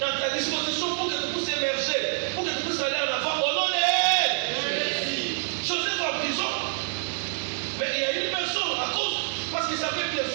ta disposition pour que tu puisses émerger, pour que tu puisses aller en avant. Au nom de Joseph en prison. Mais il y a une personne, parce qu'il savait bien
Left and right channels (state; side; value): silent; left; 60 dB below the other